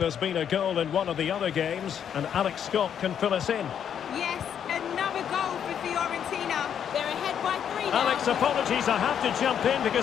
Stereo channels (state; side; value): quieter; right; 8.6 dB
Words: been a goal in one of the other games, and Alex Scott can fill us in. Yes, another goal for Fiorentina. They're ahead by 3 now. Alex, apologies, I have to jump in